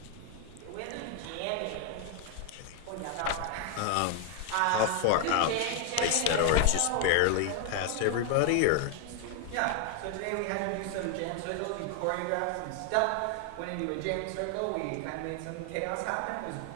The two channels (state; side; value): different; both; correlation 0.01